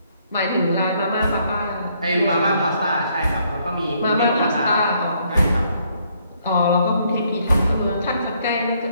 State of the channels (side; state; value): both; inverted; correlation -0.69